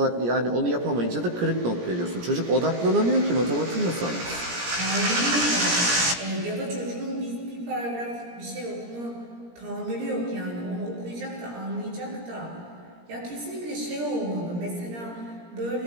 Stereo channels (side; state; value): left; late; 17 ms